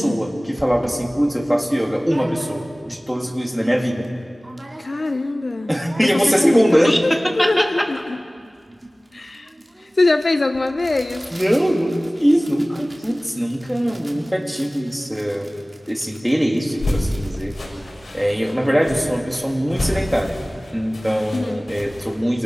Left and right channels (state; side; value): normal; both; correlation 0.98